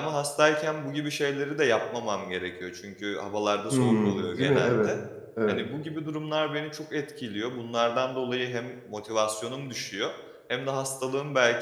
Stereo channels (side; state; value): both; identical; correlation 1.00